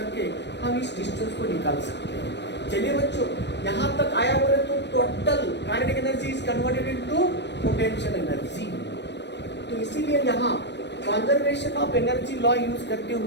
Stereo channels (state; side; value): late; right; 0.50 ms